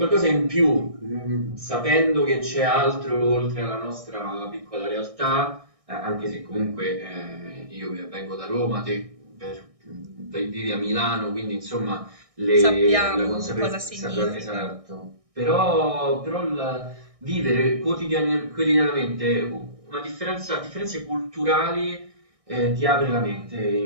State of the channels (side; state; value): left; late; 1.6 ms